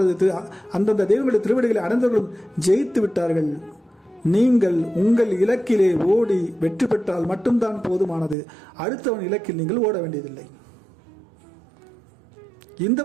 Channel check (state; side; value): drops out; left; at 8.3 s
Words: அந்தந்த தெய்வங்களுடைய திருவடிகளை அடைந்தவர்களும் ஜெயித்து விட்டார்கள். நீங்கள் உங்கள் இலக்கிலே ஓடி வெற்றி பெற்றால் மட்டும்தான் போதுமானது. அடுத்தவன் இலக்கில் நீங்கள் ஓட வேண்டியதில்லை. இந்த